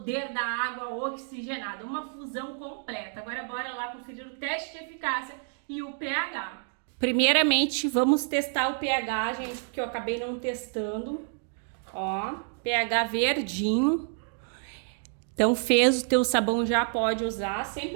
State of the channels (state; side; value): silent; left; 59 dB below the other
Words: da água oxigenada. Uma fusão completa. Agora bora lá conferir o teste de eficácia e o pH. Primeiramente, vamos testar o pH, gente, porque eu acabei não testando. Ó, pH verdinho. Então fez o teu sabão, já pode usar.